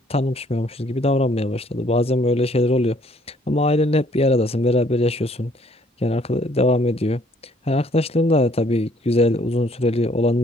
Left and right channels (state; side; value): normal; both; correlation 0.62